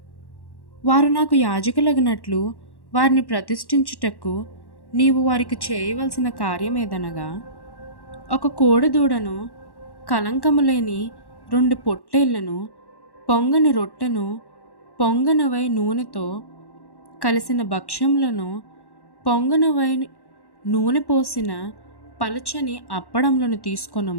వారు నాకు యాజకులగునట్లు వారిని ప్రతిష్ఠించుటకు నీవు వారికి చేయవలసిన కార్యమేదనగా, ఒక కోడెదూడను, కలంకము లేని 2 పొట్టేళ్లను, పొంగని రొట్టెను, పొంగనవై నూనెతో కలిసిన భక్ష్యములను, పొంగనవై నూనె పోసిన పలచని అప్పడములను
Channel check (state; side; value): late; right; 1.1 ms